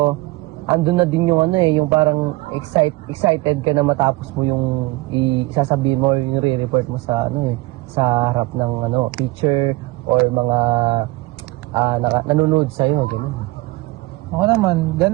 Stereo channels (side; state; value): left; quieter; 21.6 dB